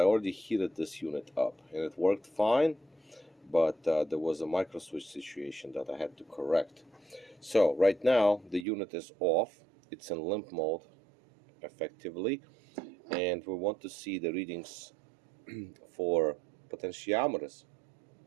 already heated this unit up, and it worked fine. But there was a micro switch situation that I had to correct. So right now the unit is off, it's in limp mode effectively, and we want to see the readings for potentiometers.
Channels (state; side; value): drops out; left; at 8.7 s